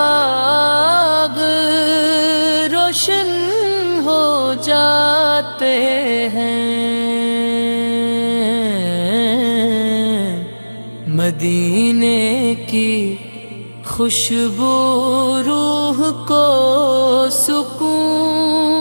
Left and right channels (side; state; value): both; inverted; correlation -1.00